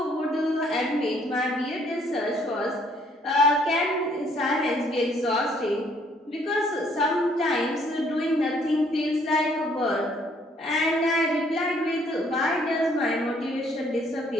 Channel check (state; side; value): normal; both; correlation 0.64